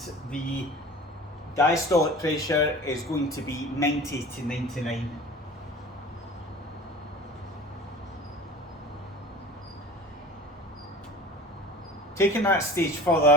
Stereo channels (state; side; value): normal; both; correlation 0.38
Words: the diastolic pressure is going to be 90 to 99. Taking that stage